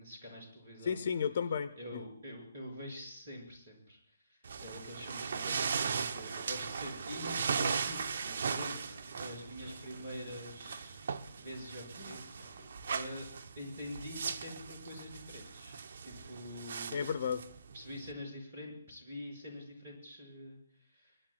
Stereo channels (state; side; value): inverted; both; correlation -0.75